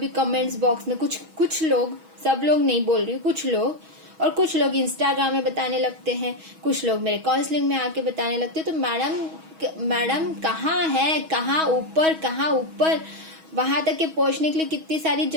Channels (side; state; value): left; late; 6.2 ms